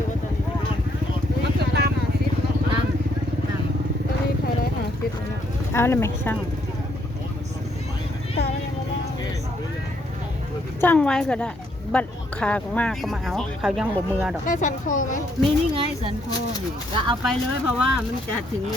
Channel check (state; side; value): normal; both; correlation 0.71